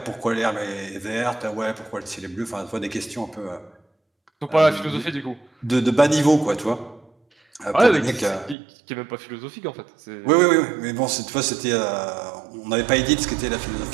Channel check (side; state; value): left; drops out; at 8.6 s